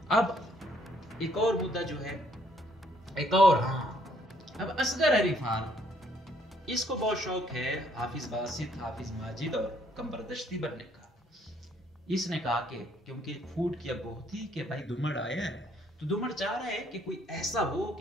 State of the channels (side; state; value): both; normal; correlation 0.66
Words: अब एक और मुद्दा जो है, एक और अब असगर अली खान, इसको बहुत शौक है हाफिज बासित, हाफिज माजिद और कमबरदश्ती बनने का। इसने कहा कि क्योंकि फूड की अब बहुत थी कि भाई दुमड़ आया है, तो दुमड़ चाह रहा है कि कोई ऐसा हो